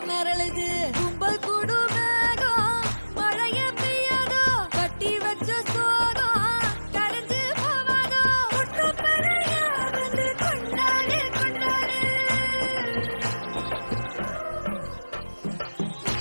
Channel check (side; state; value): both; inverted; correlation -1.00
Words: மிரளுது கும்பல் கூடு மேகம் மழைய பெய்யாதோ கட்டி வச்ச சோகம் கரைஞ்சு போவாதோ குற்றப்பறையா வந்து கொண்டாடு கொண்டாடு